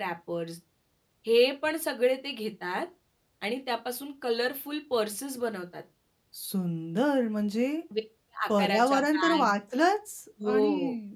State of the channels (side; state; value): both; identical; correlation 1.00